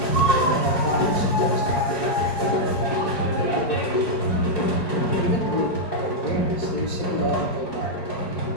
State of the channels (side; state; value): right; late; 4.8 ms